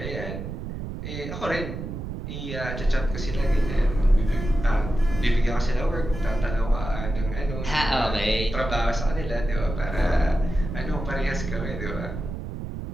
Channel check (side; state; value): right; noise; rumble, 7 dB below the sound